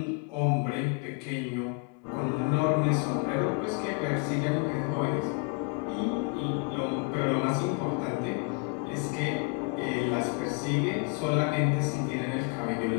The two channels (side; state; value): right; quieter; 33.3 dB